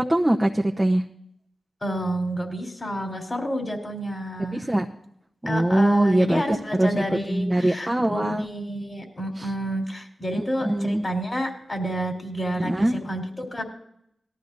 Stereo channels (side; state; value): both; normal; correlation 0.96